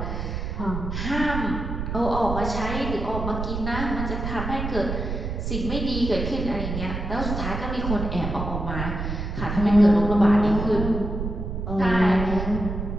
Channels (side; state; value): right; noise; rumble, 4 dB below the sound